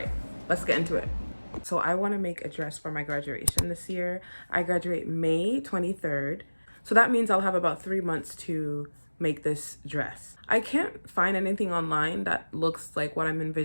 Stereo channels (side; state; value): both; inverted; correlation -1.00